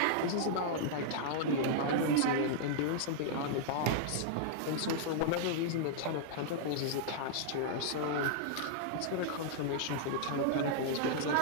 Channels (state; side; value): different; both; correlation -0.01